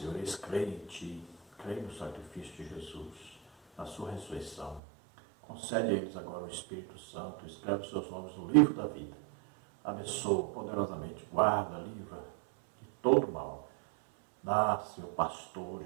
eles creem em Ti, creem no sacrifício de Jesus, na sua ressurreição. Concede a eles agora o Espírito Santo, escreve os seus nomes no livro da vida. Abençoa poderosamente, guarda, livra de todo mal. Dá, Senhor,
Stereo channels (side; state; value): left; drops out; at 4.8 s